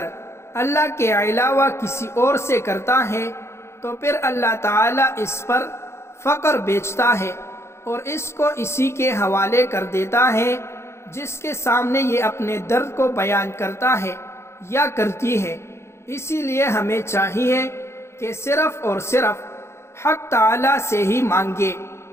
اللہ کے علاوہ کسی اور سے کرتا ہے تو پھر اللہ تعالیٰ اس پر فقر بیچتا ہے اور اس کو اسی کے حوالے کر دیتا ہے جس کے سامنے یہ اپنے درد کو بیان کرتا ہے یا کرتی ہے۔ اسی لیے ہمیں چاہیے کہ صرف اور صرف حق تعالیٰ سے ہی مانگے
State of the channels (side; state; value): right; late; 0.13 ms